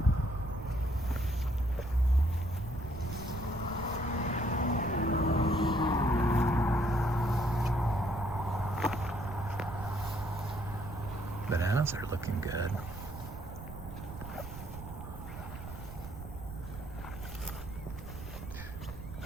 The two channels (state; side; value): noise; right; rumble, 10 dB below the sound